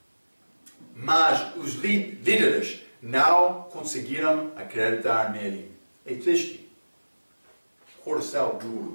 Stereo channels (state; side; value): inverted; both; correlation -1.00